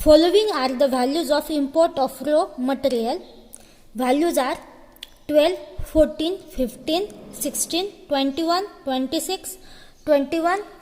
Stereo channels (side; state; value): both; identical; correlation 1.00